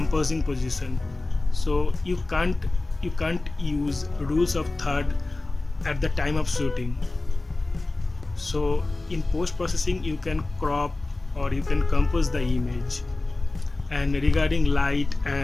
position. So you can't use rules of third at the time of shooting. So in post processing you can crop or you can compose the image. And regarding light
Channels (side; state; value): right; quieter; 3.1 dB